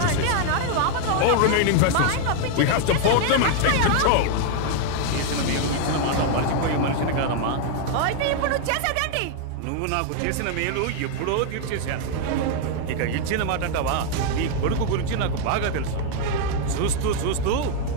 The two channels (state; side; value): different; both; correlation 0.00